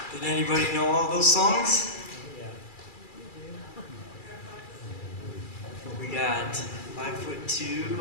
Did anybody know all those songs? We got 5'2",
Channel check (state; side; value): late; right; 2.3 ms